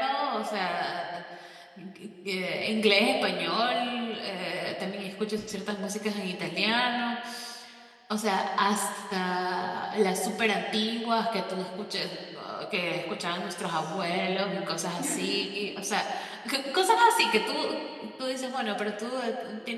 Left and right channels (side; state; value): both; identical; correlation 1.00